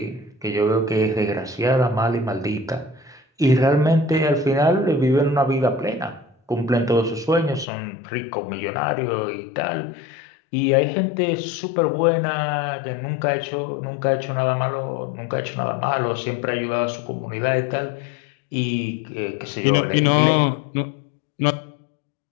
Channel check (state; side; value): drops out; right; at 7.7 s